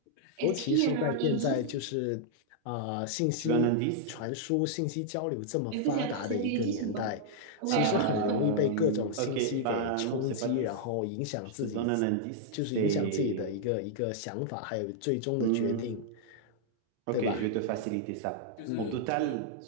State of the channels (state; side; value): different; both; correlation -0.01